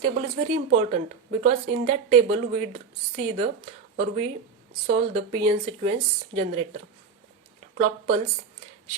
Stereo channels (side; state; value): left; quieter; 5.5 dB